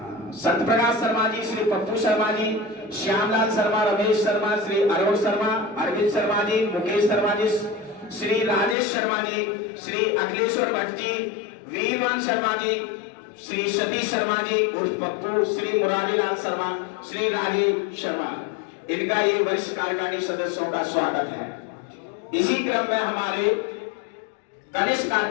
सत्यप्रकाश शर्मा जी, श्री पप्पू शर्मा जी, श्यामलाल शर्मा, रमेश शर्मा, श्री अरुण शर्मा, अरविंद शर्मा जी, मुकेश शर्मा जी, श्री राजेश शर्मा जी, श्री अखिलेश्वर भट्ट जी, वीरवंश शर्मा जी, श्री सतीश शर्मा जी उर्फ पप्पू, श्री मुरारीलाल शर्मा, श्री राजीव शर्मा, इनका ये वरिष्ठ कार्यकारिणी सदस्यों का स्वागत है। इसी क्रम में हमारे कनिष्ठ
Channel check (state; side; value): drops out; right; at 8.8 s